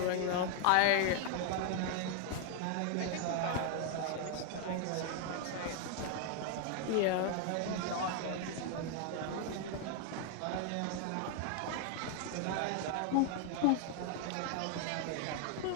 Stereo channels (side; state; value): both; different; correlation 0.00